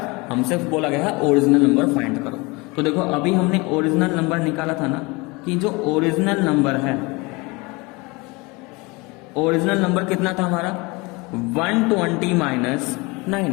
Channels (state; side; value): quieter; right; 25.7 dB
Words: हमसे बोला गया है ओरिजिनल नंबर फाइंड करो। तो देखो अभी हमने ओरिजिनल नंबर निकाला था ना, कि जो ओरिजिनल नंबर है, ओरिजिनल नंबर कितना था हमारा 120 माइनस